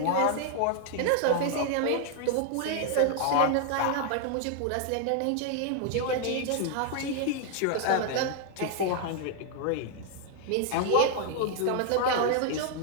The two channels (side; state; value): both; different; correlation 0.00